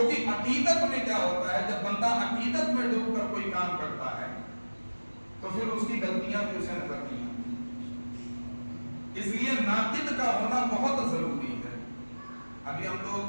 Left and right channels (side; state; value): both; inverted; correlation -1.00